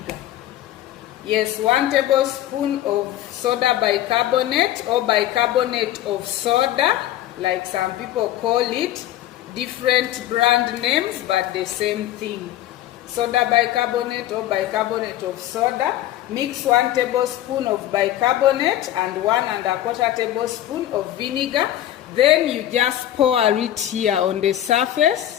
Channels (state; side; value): quieter; right; 13.0 dB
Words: Yes, 1 tablespoon of soda bicarbonate or bicarbonate of soda, like some people call it, different brand names but the same thing. Soda bicarbonate or bicarbonate of soda. Mix 1 tablespoon of bicarbonate and 1¼ tablespoon of vinegar. Then you just pour it here on the